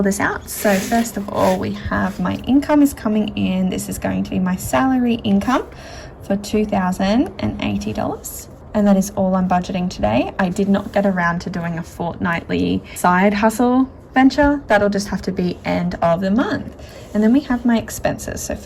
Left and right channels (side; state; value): both; identical; correlation 1.00